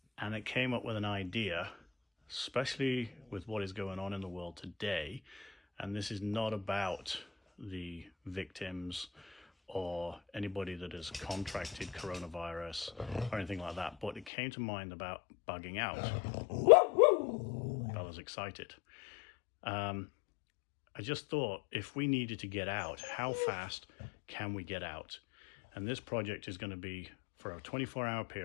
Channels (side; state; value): right; drops out; at 14.3 s